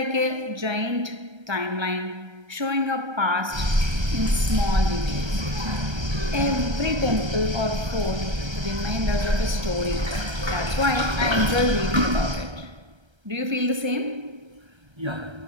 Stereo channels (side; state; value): left; late; 1.3 ms